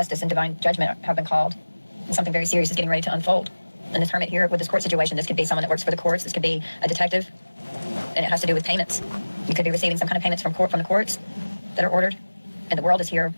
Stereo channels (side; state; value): both; inverted; correlation -1.00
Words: and divine judgment have been called. And something very serious is getting ready to unfold. And this hermit here with this court situation, this could be someone that works for the courts. This could be a detective. And it has to do with payments. You could be receiving some kind of payments from the courts that are ordered. And the world is here.